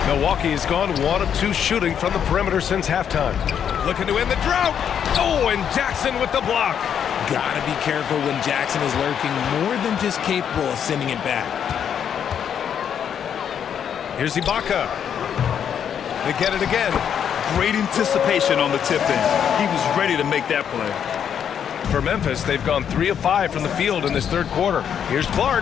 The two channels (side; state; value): right; quieter; 8.4 dB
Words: Milwaukee has gone 1 of 2 shooting from the perimeter since halftime. Looking to end the drought. Oh, and Jackson with the block. Gotta be careful when Jackson is lurking, more than just capable of sending it back. Here's Ibaka. They get it again. Great anticipation on the tip in. He was ready to make that play. For Memphis, they've gone 3 of 5 from the field in this third quarter. Here's